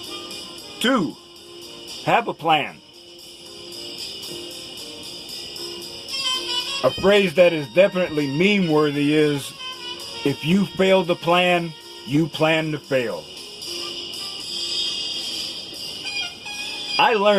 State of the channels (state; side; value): identical; both; correlation 1.00